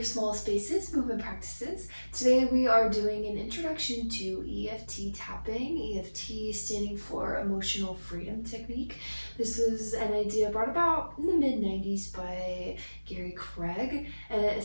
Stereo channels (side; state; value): both; inverted; correlation -1.00